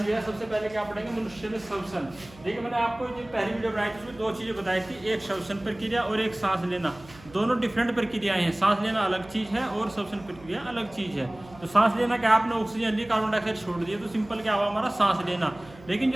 है सबसे पहले क्या पढ़ेंगे, मनुष्य में श्वसन। देखिए, मैंने आपको जो पहली वीडियो बनाई थी उसमें दो चीज़ें बताई थी, एक श्वसन प्रक्रिया और एक सांस लेना। दोनों डिफरेंट प्रक्रियाएं हैं। सांस लेना अलग चीज़ है और श्वसन प्रक्रिया अलग चीज़ है। तो सांस लेना क्या, आपने ऑक्सीजन ली, कार्बन डाइऑक्साइड छोड़ दिया, तो सिंपल क्या हुआ हमारा सांस लेना। लेकिन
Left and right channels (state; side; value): noise; right; hum, 22 dB below the sound